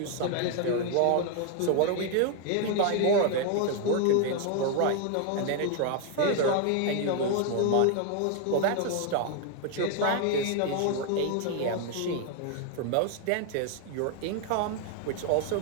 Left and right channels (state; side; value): different; both; correlation 0.00